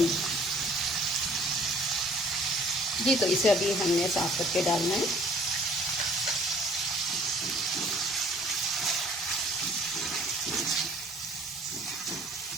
जी तो इसे अभी हमने साफ करके डालना है।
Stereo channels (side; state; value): both; normal; correlation 0.54